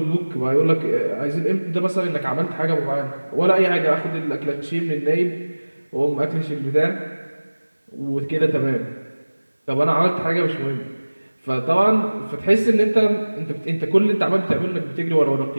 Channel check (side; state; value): both; inverted; correlation -1.00